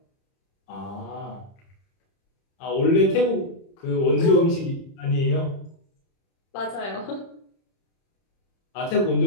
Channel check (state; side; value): late; right; 30 ms